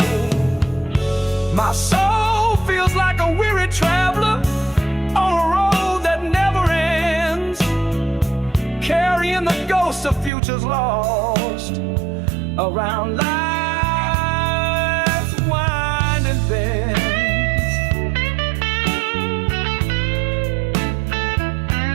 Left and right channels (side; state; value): left; drops out; at 10.3 s